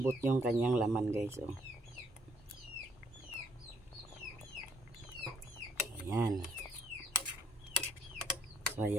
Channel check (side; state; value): both; normal; correlation 0.67